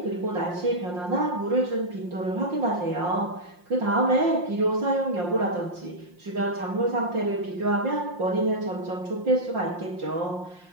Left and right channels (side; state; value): left; late; 5.7 ms